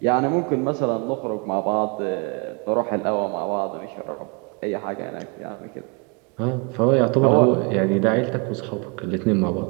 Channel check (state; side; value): quieter; left; 33.0 dB